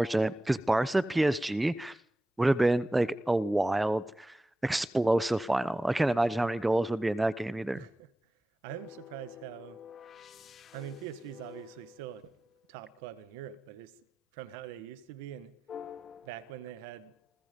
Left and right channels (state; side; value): normal; both; correlation 0.96